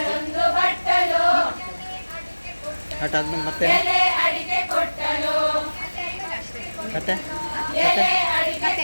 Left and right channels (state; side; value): inverted; both; correlation -1.00